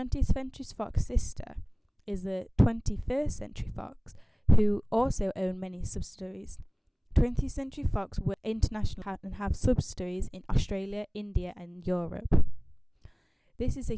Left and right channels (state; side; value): identical; both; correlation 1.00